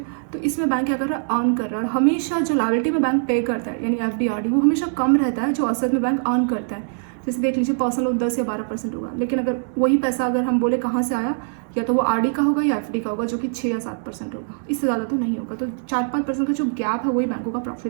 तो इसमें बैंक क्या कर रहा है, अर्न कर रहा है। और हमेशा जो लायबिलिटी में बैंक पे करता है यानी एफडी आरडी वो हमेशा कम रहता है जो असेट में बैंक अर्न करता है। जैसे देख लीजिए, पर्सनल लोन 10 या 12% होगा, लेकिन अगर वही पैसा अगर हम बोले कहाँ से आया, या तो वो आरडी का होगा या एफडी का होगा जो कि 6 या 7% होगा, इससे ज़्यादा तो नहीं होगा। तो 4-5% का जो गैप है वही बैंकों का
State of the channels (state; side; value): silent; left; 64 dB below the other